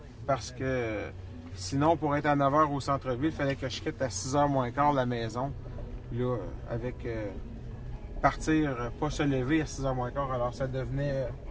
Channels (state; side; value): identical; both; correlation 1.00